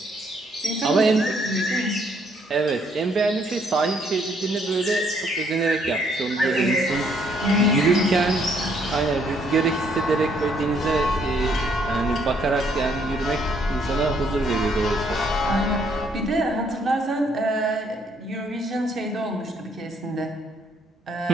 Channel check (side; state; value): both; normal; correlation 0.68